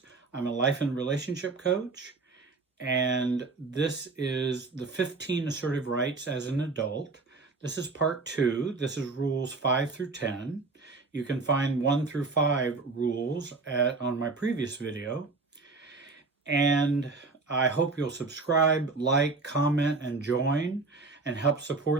I'm a life and relationship coach, and this is the 15 assertive rights as an adult. This is part 2. This is rules 5 through 10. You can find 1 through 5 rules on my previous video. And I hope you'll subscribe, like, comment, and join, and help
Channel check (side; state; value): left; quieter; 3.9 dB